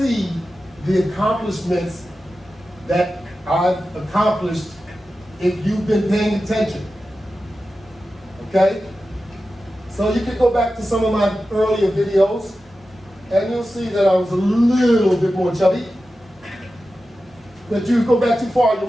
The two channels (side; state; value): both; normal; correlation 0.93